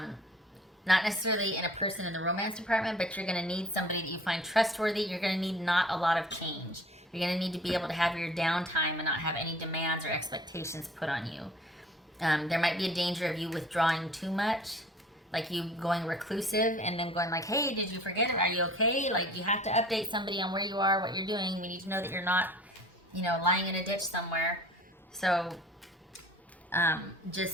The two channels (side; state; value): both; normal; correlation 0.48